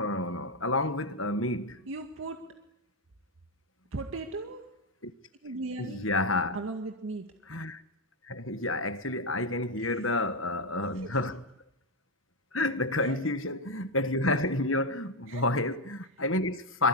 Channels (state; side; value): normal; both; correlation 0.06